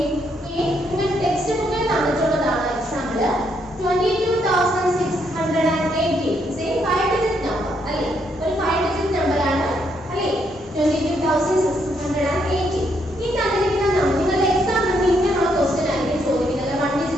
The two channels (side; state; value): both; normal; correlation 0.75